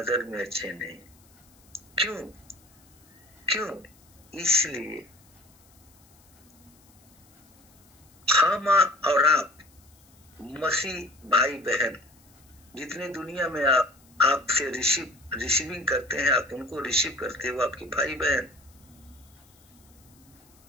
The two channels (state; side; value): noise; left; hiss, 30 dB below the sound